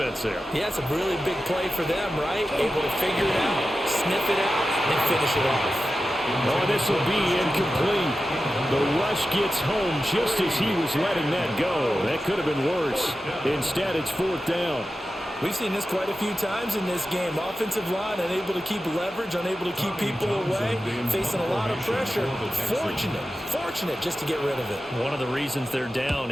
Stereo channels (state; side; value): normal; both; correlation 0.92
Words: there. Yeah, it's a really big play for them, right? Able to figure it out, sniff it out, and finish it off. Oh, this will be incomplete. The rush gets home just as he was letting that go. That could have been worse. Instead, it's 4th down. We've seen this quite a few times in this game. Offensive line unable to keep leverage, unable to keep people away, facing a lot of pressure. Fortunate just to get rid of it. One of the reasons they're down